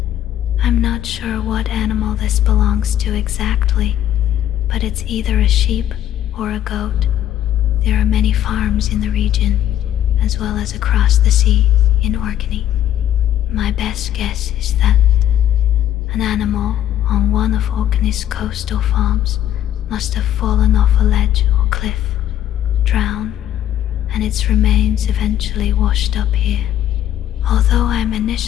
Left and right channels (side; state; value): right; quieter; 11.5 dB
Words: I'm not sure what animal this belongs to exactly, but it's either a sheep or a goat. There are many farms in the region, as well as across the sea in Orkney. My best guess is that an animal on one of Orkney's coastal farms must have fallen off a ledge or cliff, drowned, and its remains eventually washed up here. Although I'm